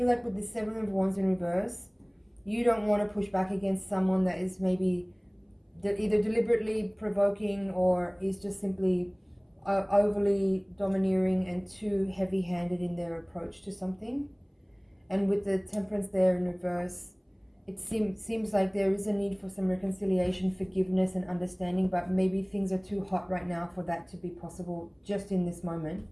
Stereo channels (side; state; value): both; identical; correlation 1.00